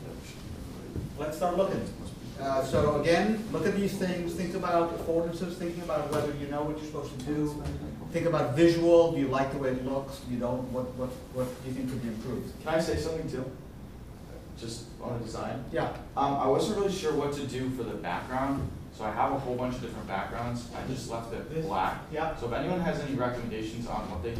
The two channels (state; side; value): identical; both; correlation 1.00